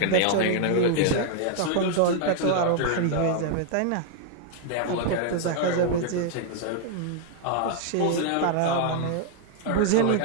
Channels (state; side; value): different; both; correlation 0.00